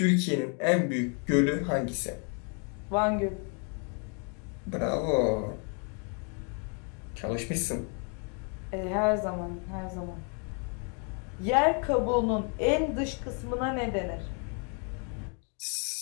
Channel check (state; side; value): quieter; right; 39.6 dB